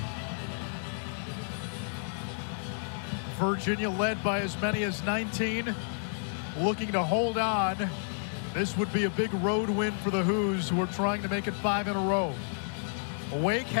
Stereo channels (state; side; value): silent; right; digital silence